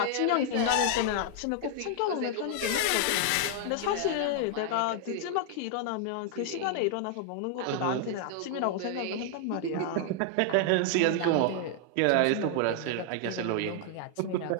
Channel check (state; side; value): different; both; correlation 0.00